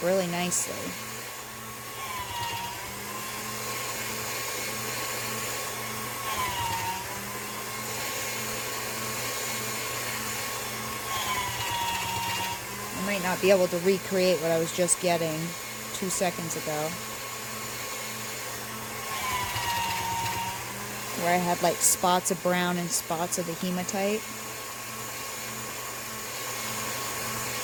really nicely. I might not be able to recreate what I was just getting 2 seconds ago, where I had like spots of brown and spots of the hematite.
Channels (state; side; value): identical; both; correlation 1.00